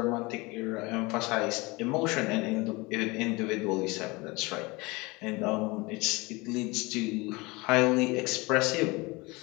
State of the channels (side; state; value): right; quieter; 24.2 dB